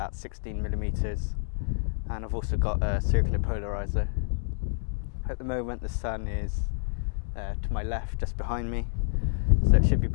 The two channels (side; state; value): right; silent; digital silence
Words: 16mm, and I've also got a circular polarizer. At the moment the sun is to my left, just behind me, so it should be